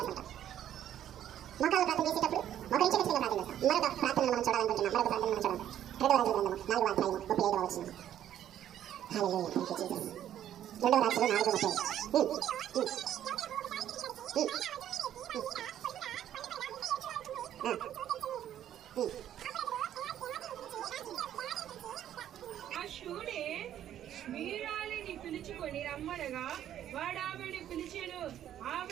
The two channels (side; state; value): left; quieter; 11.1 dB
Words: మోకాలు ప్రార్థన చేసేటప్పుడు మోకరించి ఖచ్చితంగా ప్రార్థన చేస్తాం. మరొక ప్రార్థనను మనం చూడాలనుకుంటున్నాం. మరొక ప్రార్థన మనం చూడాలి. 2వ రాజుల గ్రంథము 4వ అధ్యాయము 35వ వచనం. హల్లెలూయా, థాంక్యూ జీసస్. 2వ రాజులు 4:30. వీరాలిని పిలుచుకొని రమ్మనగా వాడు ఆమెను పిలిచెను.